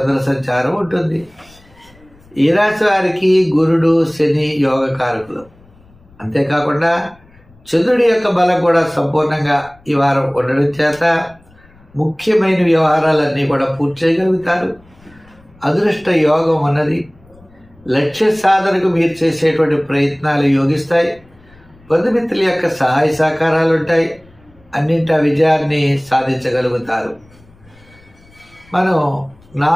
సంచారం ఉంటుంది. ఈ రాశి వారికి గురుడు, శని యోగకారకులు. అంతేకాకుండా చంద్రుడి యొక్క బలం కూడా సంపూర్ణంగా ఈ వారం ఉండడం చేత ముఖ్యమైన వ్యవహారాలన్నీ కూడా పూర్తి చేయగలుగుతారు. అదృష్ట యోగం ఉన్నది. లక్ష్య సాధనకు మీరు చేసేటువంటి ప్రయత్నాలు యోగిస్తాయి. బంధుమిత్రుల యొక్క సహాయ సహకారాలు ఉంటాయి. అన్నింటా విజయాన్ని సాధించగలుగుతారు. మనం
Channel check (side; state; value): left; noise; rumble, 28 dB below the sound